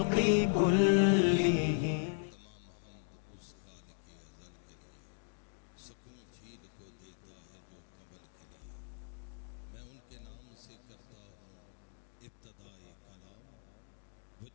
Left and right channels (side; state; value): right; silent; digital silence